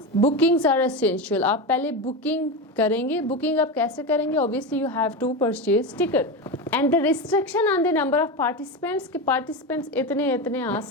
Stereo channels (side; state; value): both; normal; correlation 0.19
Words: bookings are essential, आप पहले बुकिंग करेंगे। बुकिंग आप कैसे करेंगे? Obviously you have to purchase ticket. And the restriction on the number of participants, के पार्टिसिपेंट्स इतने आ